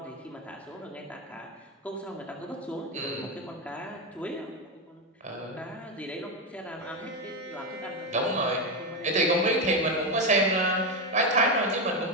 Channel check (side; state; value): both; normal; correlation 0.10